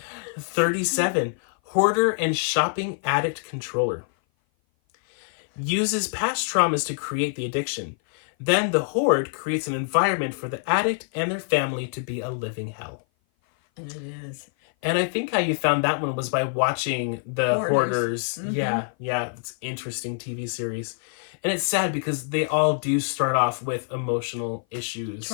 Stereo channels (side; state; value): right; silent; 56 dB below the other